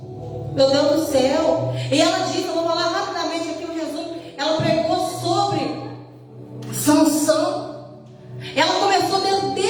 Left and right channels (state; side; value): identical; both; correlation 1.00